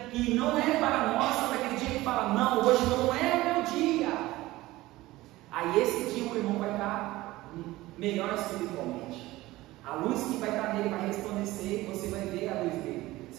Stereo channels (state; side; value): quieter; left; 18.2 dB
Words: que não é para nós, sabe aquele dia que fala, não, hoje não é o meu dia. Aí esse dia o irmão vai estar melhor espiritualmente. A luz que vai estar nele vai resplandecer, você vai ver a luz dele. Você